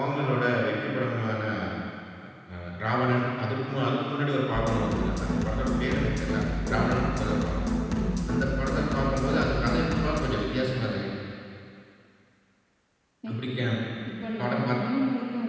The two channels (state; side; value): identical; both; correlation 1.00